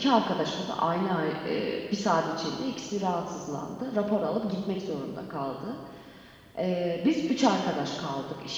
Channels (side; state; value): both; identical; correlation 1.00